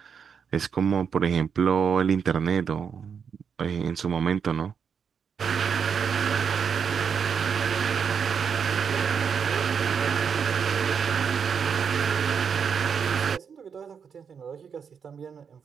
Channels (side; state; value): left; quieter; 6.7 dB